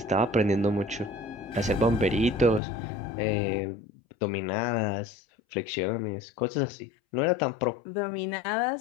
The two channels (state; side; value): drops out; right; at 2.6 s